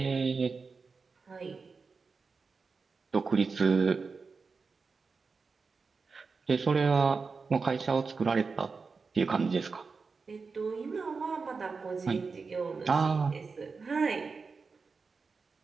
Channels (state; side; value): quieter; left; 4.7 dB